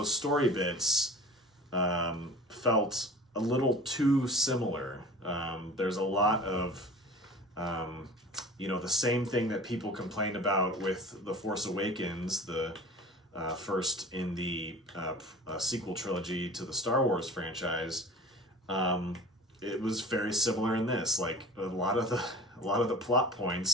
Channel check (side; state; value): both; normal; correlation 0.40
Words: story bits felt a little too similar. There's a lot of the same thing that people complained about with The Force Awakens, the first in the sequel trilogy to the Star Wars franchise. It was very similar in this. Like a lot of the plot